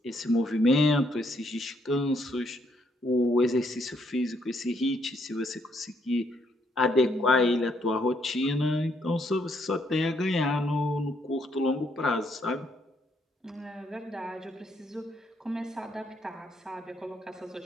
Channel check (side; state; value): both; normal; correlation 0.72